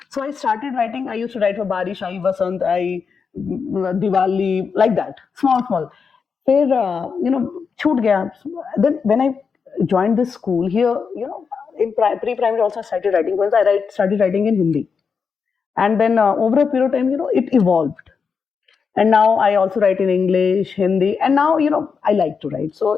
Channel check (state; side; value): quieter; right; 5.8 dB